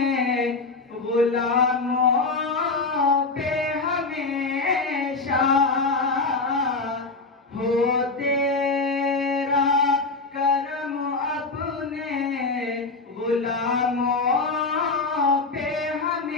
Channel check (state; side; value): quieter; right; 3.8 dB